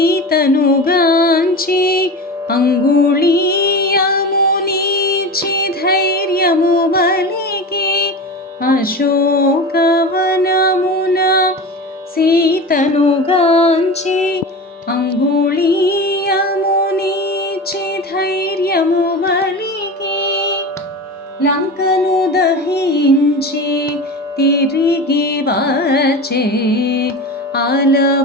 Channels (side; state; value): both; normal; correlation 0.28